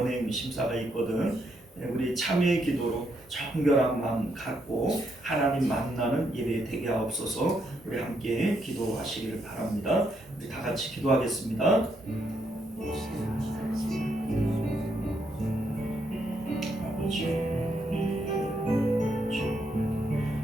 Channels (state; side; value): normal; both; correlation 0.77